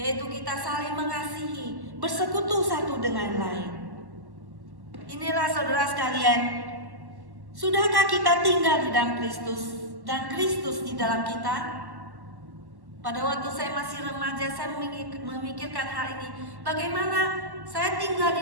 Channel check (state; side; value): late; left; 1.1 ms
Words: kita saling mengasihi, bersekutu satu dengan lain. Inilah saudara sekalian, sudahkah kita tinggal di dalam Kristus dan Kristus di dalam kita? Pada waktu saya masih remaja, saya memikirkan hal ini. Bagaimana saya tinggal